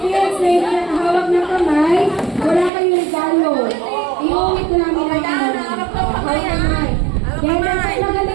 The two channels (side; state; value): left; drops out; at 2.7 s